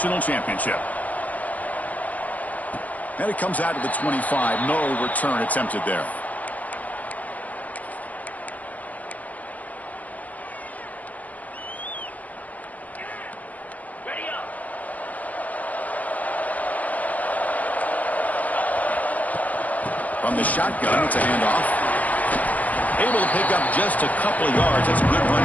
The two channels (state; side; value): late; right; 0.075 ms